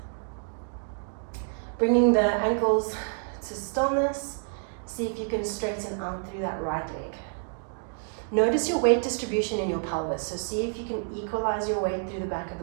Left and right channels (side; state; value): left; silent; 59 dB below the other